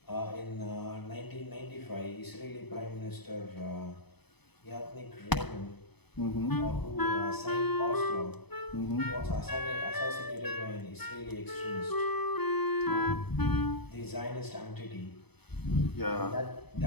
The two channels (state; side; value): late; right; 0.98 ms